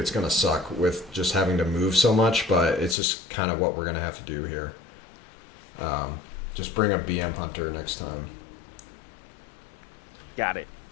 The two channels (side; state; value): right; drops out; at 3.0 s